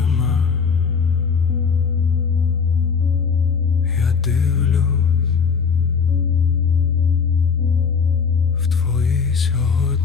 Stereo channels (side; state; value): right; quieter; 5.8 dB